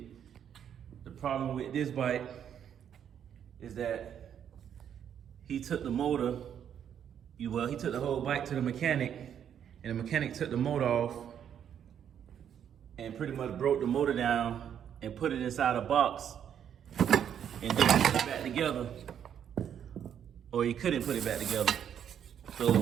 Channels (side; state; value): left; quieter; 9.0 dB